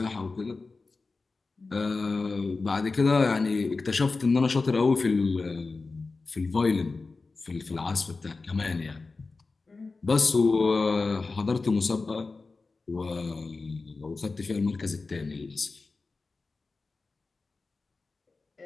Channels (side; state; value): right; quieter; 3.9 dB